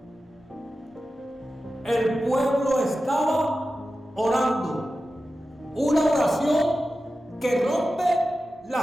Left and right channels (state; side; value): normal; both; correlation 0.93